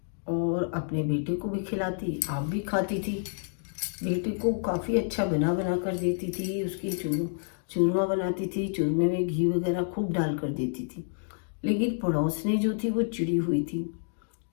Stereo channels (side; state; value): right; silent; digital silence